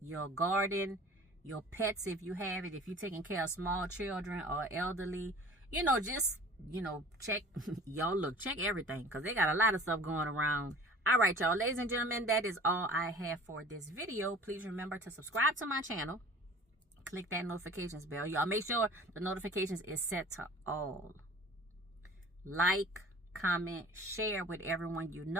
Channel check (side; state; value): both; normal; correlation 0.45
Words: garden, your pets if you have it, if you're taking care of small children or elderly. You know, just, you know, check, y'all look, check everything, because they got a lot of stuff going around. All right, y'all, ladies and gentlemen, that is all I have for this video. Please remember to subscribe to my channel. Click that notifications bell. Y'all make sure the notifications is set to all. Like, comment, share with everyone you